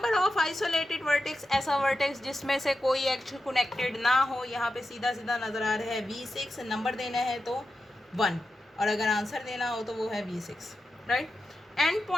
of isolated vertex, ऐसा वर्टेक्स जिसमें से कोई एक्च कनेक्टेड ना हो, यहाँ पे सीधा सीधा नज़र आ रहा है V6। नंबर देना है तो 1 और अगर आंसर देना हो तो वो है V6, right. And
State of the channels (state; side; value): normal; both; correlation 0.90